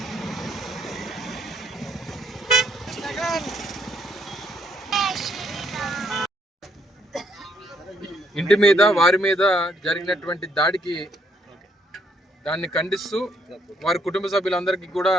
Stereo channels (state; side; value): normal; both; correlation 0.70